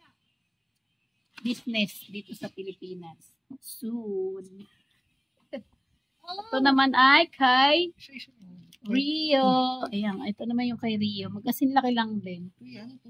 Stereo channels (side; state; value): both; identical; correlation 1.00